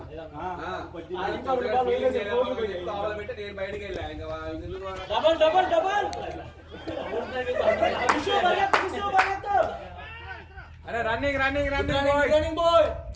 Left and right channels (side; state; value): both; identical; correlation 1.00